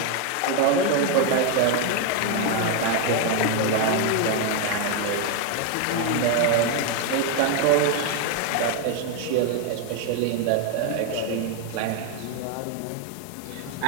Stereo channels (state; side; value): different; both; correlation 0.01